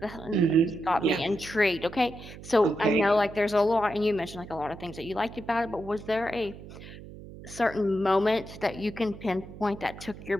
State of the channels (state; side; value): noise; right; hum, 15 dB below the sound